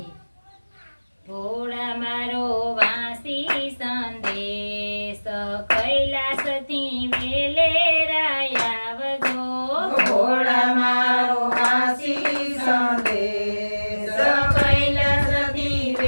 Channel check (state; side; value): inverted; both; correlation -1.00